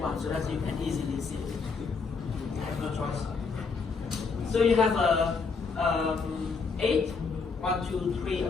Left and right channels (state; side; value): quieter; right; 4.8 dB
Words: so that you can easily see it. I have no choice. So you have 8, 1, 2, 3